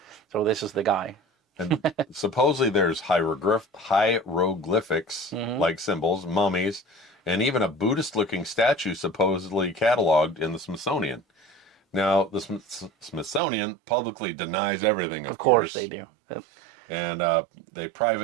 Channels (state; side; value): drops out; left; at 13.4 s